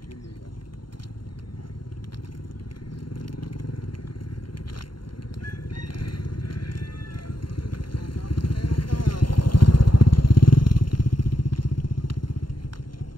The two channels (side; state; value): right; late; 0.72 ms